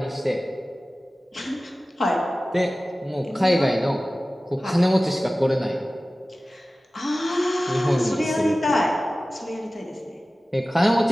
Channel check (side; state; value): both; normal; correlation 0.97